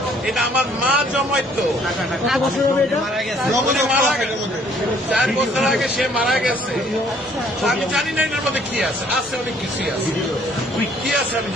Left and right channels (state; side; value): normal; both; correlation 0.61